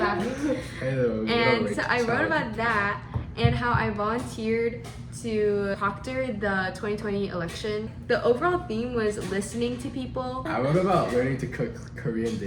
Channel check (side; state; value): both; identical; correlation 1.00